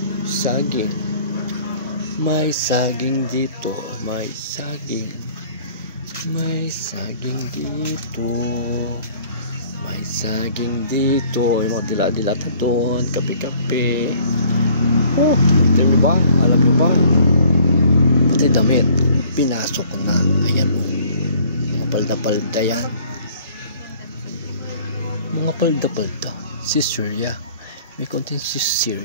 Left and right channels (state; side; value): inverted; both; correlation -0.55